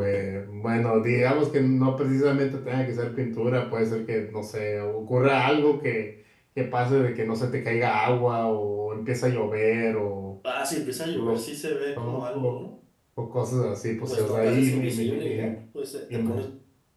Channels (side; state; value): both; identical; correlation 1.00